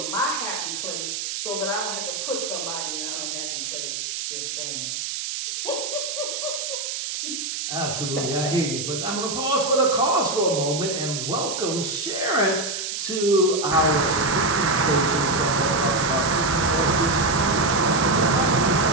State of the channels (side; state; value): right; noise; hiss, 4 dB below the sound